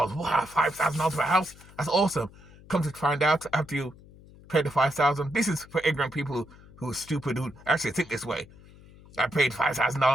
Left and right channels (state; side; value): noise; left; hum, 22 dB below the sound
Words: Wow, $5,000 for a house? That's awesome. Come to find out, after you pay the $5,000, this is for ignorant people who are stupid, who actually think this way. I paid